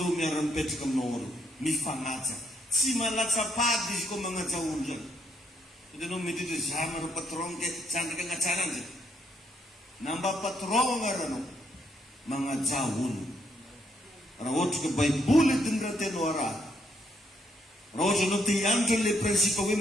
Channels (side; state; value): both; normal; correlation 0.73